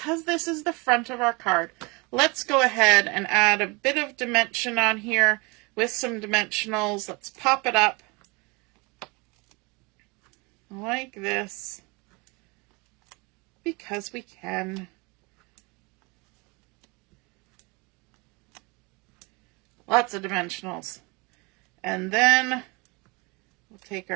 this is the front of our card, let's go ahead and add a bit of dimension on here with some dimensionals. Let's pop it up like this because we can. Lots of dimensionals. And then we'll take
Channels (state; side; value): quieter; left; 27.7 dB